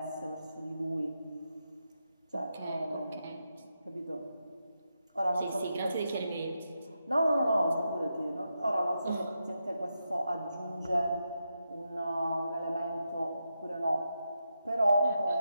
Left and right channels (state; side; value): inverted; both; correlation -0.86